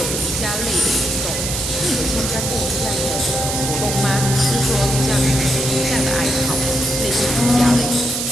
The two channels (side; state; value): right; noise; hiss, 2 dB below the sound